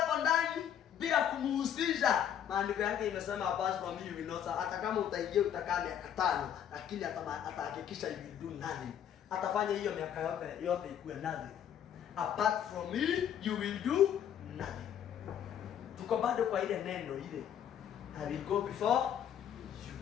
ndani bila kumuhusisha. Maandiko yake imesema apart from me you will not. Hata kama utaingia utakaa miaka 5, lakini atahakikisha you will do nothing. Atafanya hiyo miaka yote ikuwe nothing. Apart from me you will do nothing. Tuko bado kwa ile neno ile, I will go before you.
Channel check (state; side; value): quieter; right; 9.4 dB